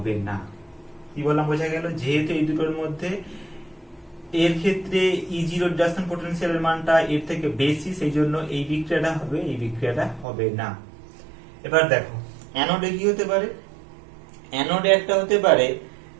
না। কি বললাম, বোঝা গেল, যেহেতু এই দুটোর মধ্যে এর ক্ষেত্রে E0 রিডাকশন পটেনশিয়ালের মানটা এর থেকে বেশি, সেই জন্য এই বিক্রিয়াটা হবে, এই বিক্রিয়াটা হবে না। এবার দেখো অ্যানোডে কি হতে পারে, অ্যানোডে একটা হতে পারে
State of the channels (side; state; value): left; drops out; at 10.2 s